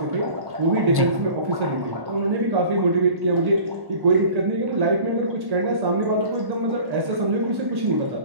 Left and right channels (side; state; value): left; late; 1.1 ms